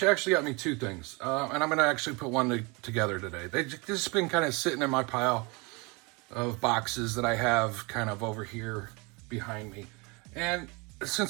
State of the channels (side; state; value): left; quieter; 28.3 dB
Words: actually got me two things, and I'm going to actually put one together today. They've just been kind of sitting in my pile of boxes that I have kind of over here behind me. And